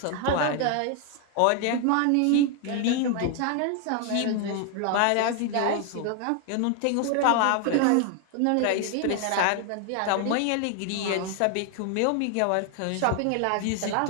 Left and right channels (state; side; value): different; both; correlation 0.00